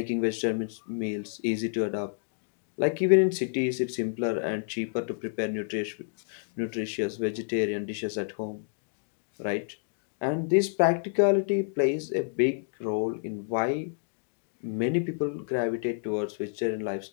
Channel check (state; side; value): silent; right; digital silence